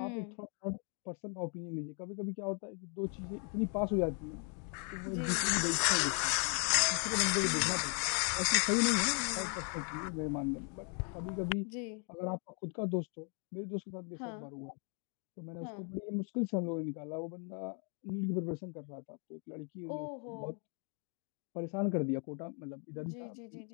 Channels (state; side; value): quieter; right; 39.8 dB